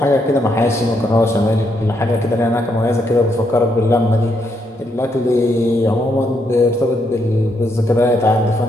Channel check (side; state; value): both; normal; correlation 0.77